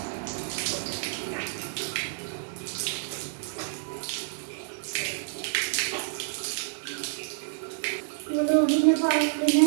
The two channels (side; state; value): left; silent; digital silence